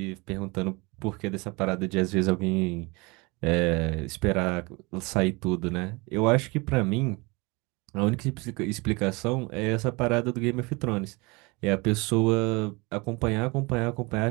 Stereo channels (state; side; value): quieter; left; 26.5 dB